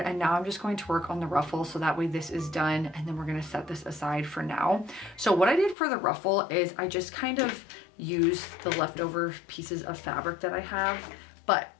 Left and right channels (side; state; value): right; drops out; at 5.8 s